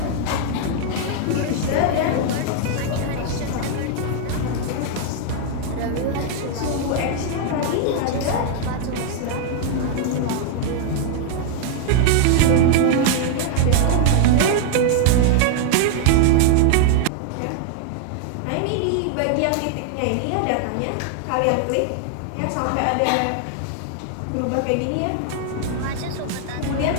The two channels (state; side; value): different; both; correlation 0.00